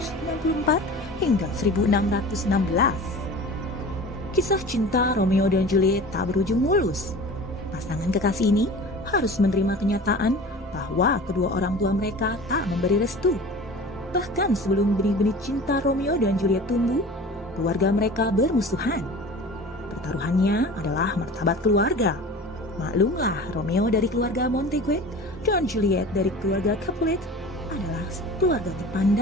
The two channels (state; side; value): normal; both; correlation 0.38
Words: hingga 1616. Kisah cinta Romeo dan Juliet tak berujung mulus. Pasangan kekasih ini harus menerima kenyataan bahwa kedua orang tua mereka tak memberi restu. Bahkan sebelum benih-benih cinta Romeo dan Juliet tumbuh, keluarga mereka bermusuhan. Pertaruhannya adalah martabat keluarga. Maklumlah, Romeo dari keluarga Montague dan Juliet dari keluarga Capulet adalah keluarga